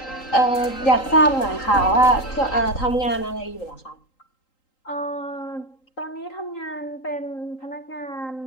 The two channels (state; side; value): late; right; 3.8 ms